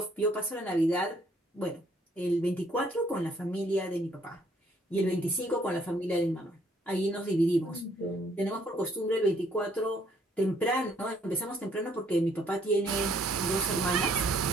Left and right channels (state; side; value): normal; both; correlation 0.65